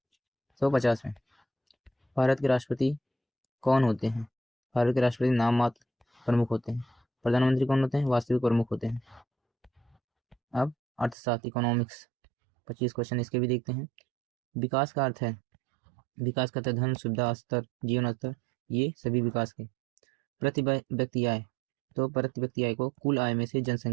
में। भारत के राष्ट्रपति कौन होते हैं? भारत के राष्ट्रपति नाम मात्र प्रमुख होते हैं। प्रधानमंत्री कौन होते हैं? वास्तविक प्रमुख होते हैं। अब अर्थशास्त्र, इकोनॉमिक्स, 25 क्वेश्चन इसके भी देखते हैं। विकास का अर्थ है, विकास का धन, सुविधा स्तर, जीवन स्तर, ये सभी विकास के। प्रति व्यक्ति आय, तो प्रति व्यक्ति आय को कुल आय में से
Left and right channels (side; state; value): left; drops out; at 11.2 s